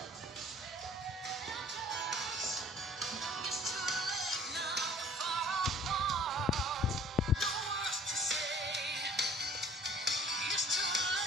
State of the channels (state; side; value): normal; both; correlation 0.51